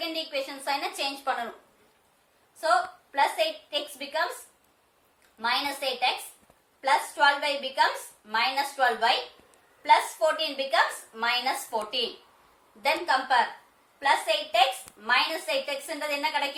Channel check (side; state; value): both; identical; correlation 1.00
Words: ஈக்குவேஷன் சைனை சேஞ்ச் பண்ணனும். So plus 8x becomes minus 8x plus 12y becomes minus 12y plus 14 becomes minus 14. Then compare plus 8x minus 8x என்றது என்ன